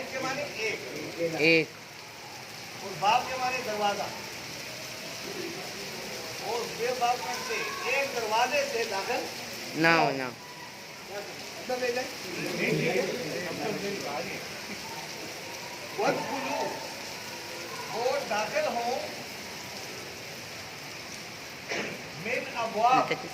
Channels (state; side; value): identical; both; correlation 1.00